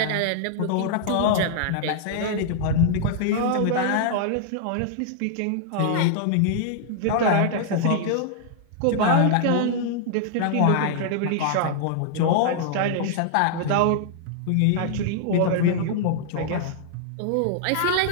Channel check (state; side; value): different; both; correlation -0.01